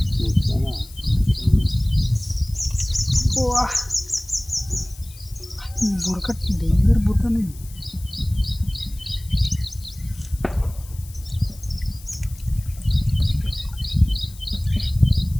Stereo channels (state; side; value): noise; left; hiss, 20 dB below the sound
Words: బురక డేంజర్ బురకనే.